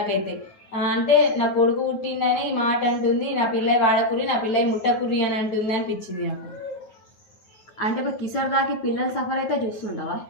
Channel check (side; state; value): right; late; 9.4 ms